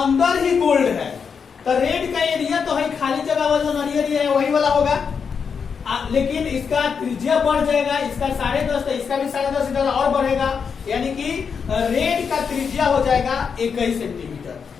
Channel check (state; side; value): quieter; right; 6.2 dB